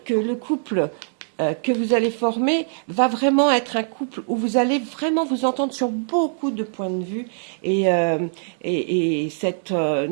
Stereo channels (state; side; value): silent; left; digital silence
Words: le couple que vous allez former va vraiment être un couple où vous allez vraiment vous entendre sur beaucoup de points de vue et cette